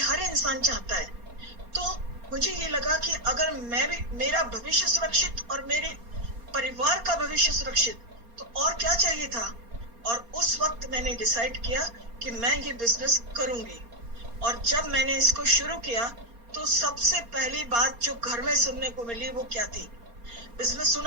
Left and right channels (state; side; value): late; left; 4.3 ms